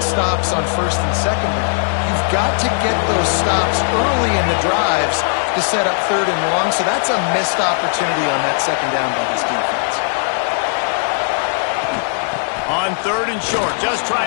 on 1st and 2nd down. You've got to get those stops early in the drives to set up 3rd and long, so that's a missed opportunity on that 2nd down by this defense. On 3rd and short, just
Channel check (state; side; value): silent; right; digital silence